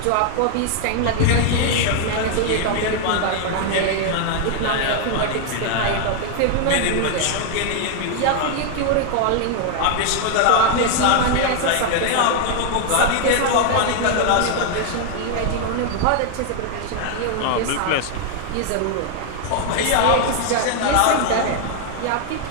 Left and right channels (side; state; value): both; different; correlation 0.00